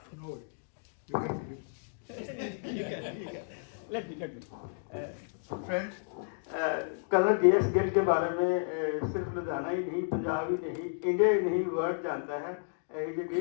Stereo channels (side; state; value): right; silent; digital silence